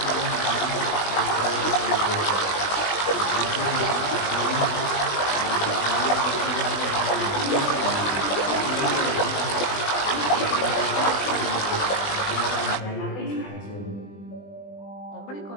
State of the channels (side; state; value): right; late; 20 ms